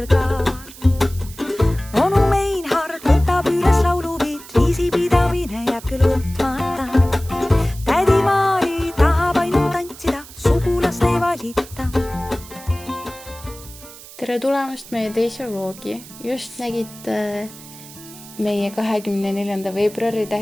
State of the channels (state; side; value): noise; right; hiss, 18 dB below the sound